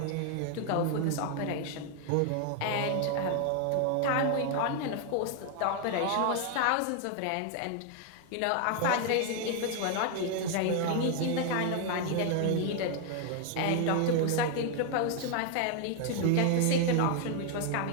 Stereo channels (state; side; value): different; both; correlation 0.00